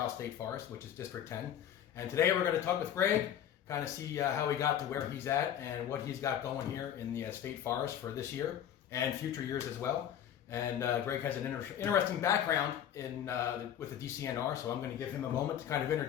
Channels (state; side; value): quieter; right; 10.1 dB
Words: State Forest, which is District 10. And today we're going to talk with Greg, kind of see how he got to where he's at and what he's got going here in the State Forest for this year and future years as well. And Greg has an interesting background with the DCNR, so I'm going to give him a moment to kind of